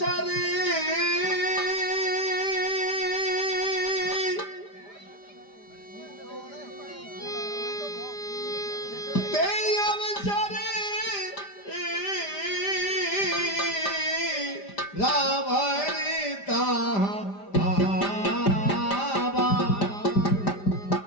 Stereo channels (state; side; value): late; right; 5.0 ms